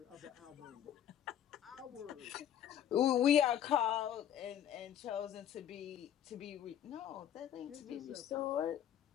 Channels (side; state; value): right; quieter; 10.3 dB